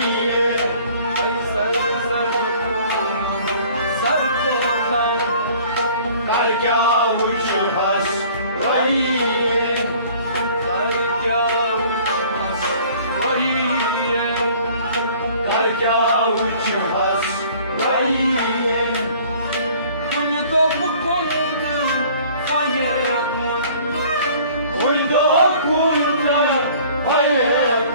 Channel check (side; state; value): both; inverted; correlation -0.52